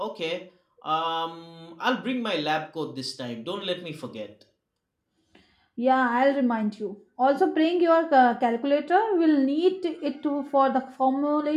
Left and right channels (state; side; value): identical; both; correlation 1.00